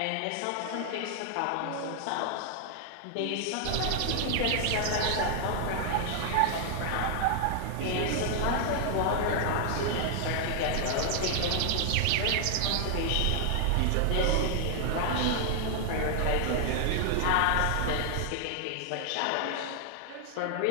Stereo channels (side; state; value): both; different; correlation 0.00